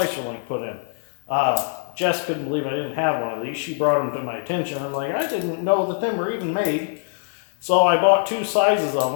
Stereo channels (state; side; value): silent; right; digital silence